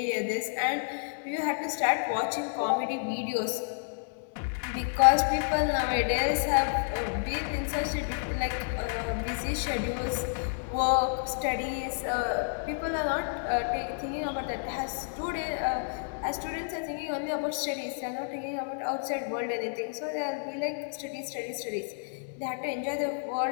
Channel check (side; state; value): right; silent; 58 dB below the other